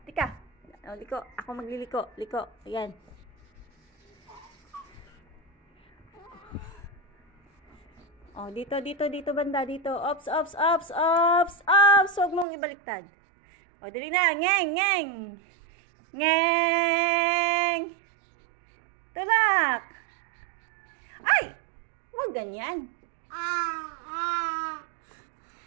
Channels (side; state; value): left; drops out; at 12.5 s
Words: tika. Oh, liko. Ako magliliko. Liko. Ayan. Oh, dito, dito, dito banda, dito. Ops, ops, ops, ops, ops. Huwag mong ibaliktad. Oh, dali na. Ngeng, ngeng. Ngeng. Tulak. Ay! Huwag ganyan.